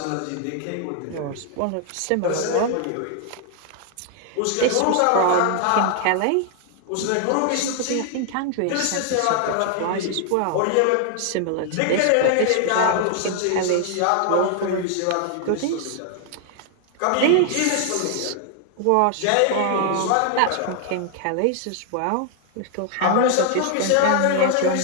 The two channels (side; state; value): both; different; correlation 0.00